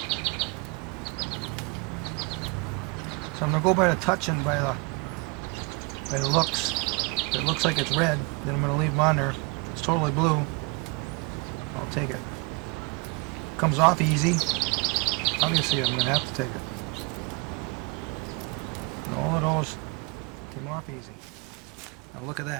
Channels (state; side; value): quieter; left; 28.2 dB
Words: So I'm going to go by the touch and by the looks. If it looks like it's red, then I'm going to leave them on there. If it's totally blue, I'll take it. Comes off easy. Obviously I'm going to have to take it. And all of those came off easy. Now look at